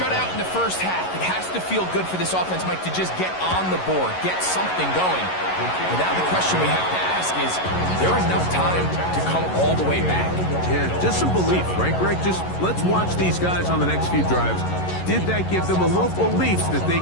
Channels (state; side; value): late; right; 11 ms